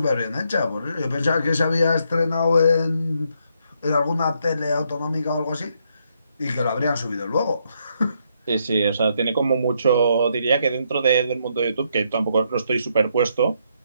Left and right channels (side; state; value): both; inverted; correlation -0.75